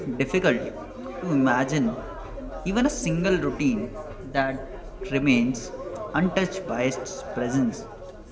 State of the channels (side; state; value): both; identical; correlation 1.00